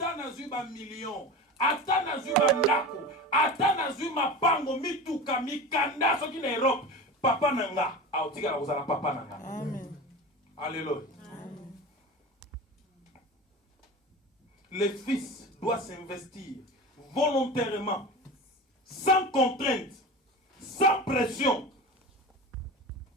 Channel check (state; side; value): normal; both; correlation 0.31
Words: na zuba million, ata na zuba ndako, ata na zuba pango mituka mikanda soki na Europe. Papa nanga, aotika la kozala papa nanga. Amen. Alléluia. Amen. Le fils doit s'investir volontairement, sans contrainte, sans pression,